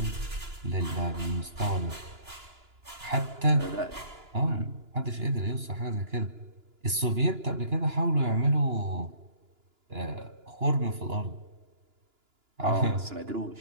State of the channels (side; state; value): left; late; 2.9 ms